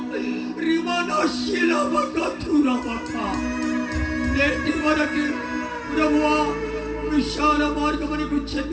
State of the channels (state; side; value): identical; both; correlation 1.00